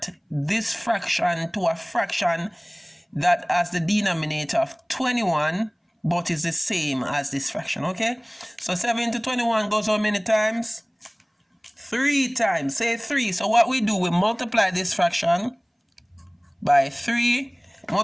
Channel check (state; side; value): identical; both; correlation 1.00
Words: this fraction to a fraction that has the denominator of 21 but is the same as this fraction. Okay, so 7 into 21 goes how many times? 3 times. Say 3. So what we do, we multiply this fraction by 3,